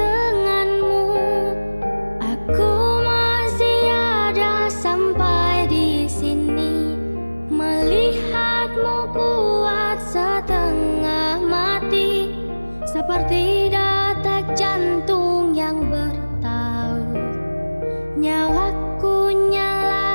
aku masih ada sampai di sini. Melihatmu kuat setengah mati, seperti detak jantung yang bertaut. Nyawaku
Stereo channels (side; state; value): both; inverted; correlation -1.00